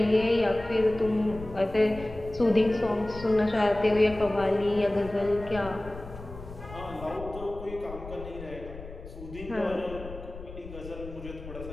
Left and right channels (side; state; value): left; noise; rumble, 13 dB below the sound